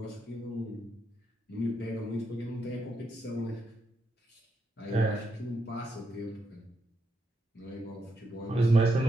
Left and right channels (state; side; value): normal; both; correlation 0.81